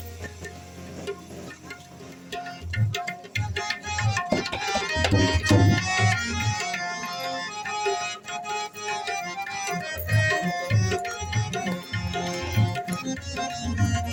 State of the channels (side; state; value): both; identical; correlation 1.00